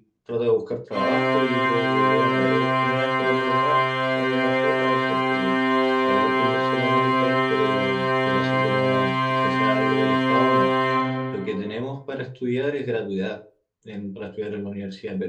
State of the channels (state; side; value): identical; both; correlation 1.00